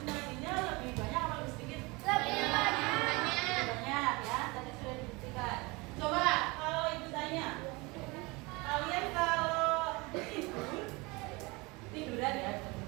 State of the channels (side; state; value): left; quieter; 25.1 dB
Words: nadinya lebih banyak atau lebih sedikit? Lebih banyak. Lebih banyak ya, tadi sudah dibuktikan. Coba kalau ibu tanya, kalian kalau tiduran ya,